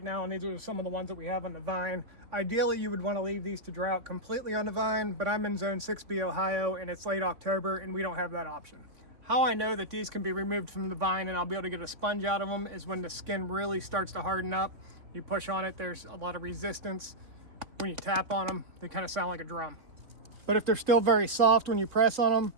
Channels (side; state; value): left; late; 3.5 ms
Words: now, and these are some of the ones that we have on the vine. Ideally, you would want to leave these to dry out completely on the vine, but I'm in zone 6B Ohio and it's late October and we don't have that option. How I know that these can be removed from the vine and I'll be able to get a sponge out of them is when the skin really starts to harden up. You push on it, there's a lot of resistance. When you tap on them, they kind of sound like a drum. But if they're still very soft when you press on them,